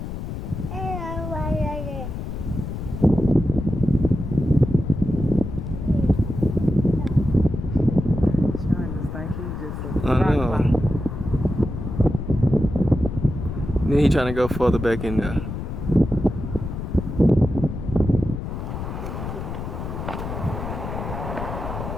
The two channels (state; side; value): noise; left; rumble, 6 dB below the sound